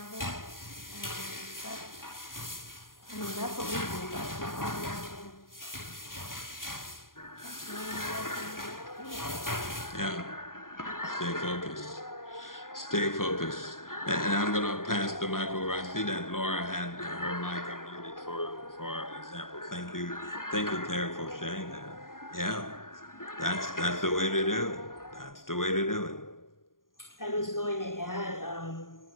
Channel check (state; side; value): late; right; 0.91 ms